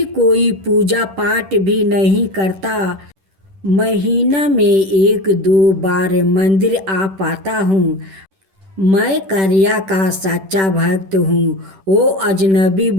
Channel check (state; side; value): late; left; 10 ms